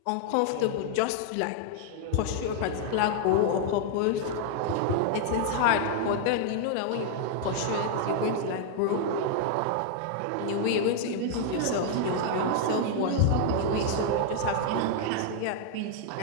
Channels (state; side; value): different; both; correlation 0.00